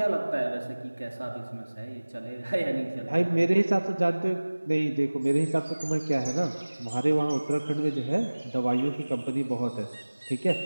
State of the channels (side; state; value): both; inverted; correlation -1.00